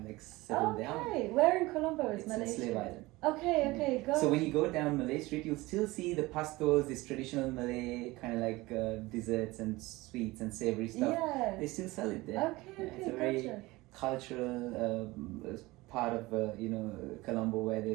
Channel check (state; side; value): quieter; left; 20.7 dB